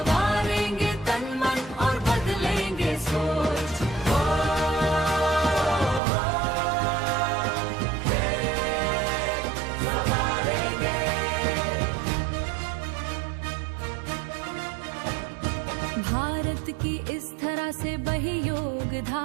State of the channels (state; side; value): drops out; left; at 6.0 s